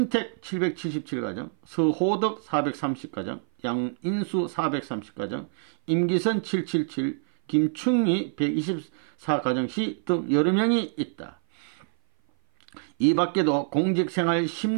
777가정, 서호덕 430가정, 양인수 430가정, 임기선 777, 김충희 124가정시 등 여러 명이 있다. 이 밖에도 공직생활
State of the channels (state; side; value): silent; left; 56 dB below the other